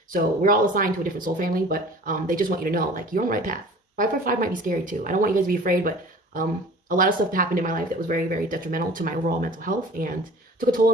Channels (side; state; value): both; normal; correlation 0.44